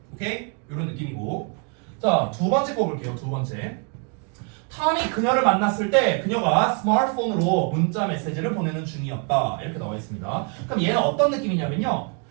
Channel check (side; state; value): left; quieter; 35.9 dB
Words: 오케이? 이런 느낌이고. 자, 두 번째 거 볼게요. 두 번째. 탐이 그녀를 만났을 때 그녀가 스마트폰으로 문자 메시지를 보내는 중이었다. 이렇게 나와 있습니다. 그럼 얘는 어떤 느낌이냐면요.